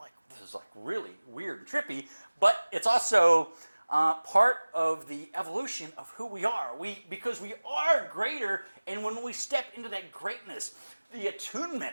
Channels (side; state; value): both; inverted; correlation -1.00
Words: this is like really weird and trippy, but it's also part of the evolution of who we are. Because we are greater, and when we step into that greatness, the